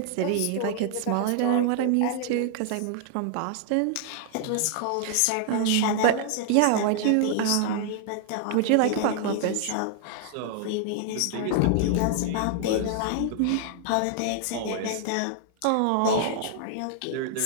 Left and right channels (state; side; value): different; both; correlation 0.00